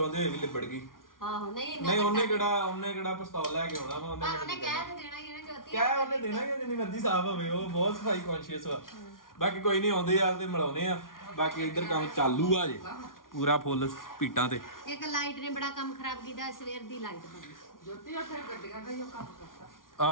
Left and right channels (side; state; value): right; late; 0.90 ms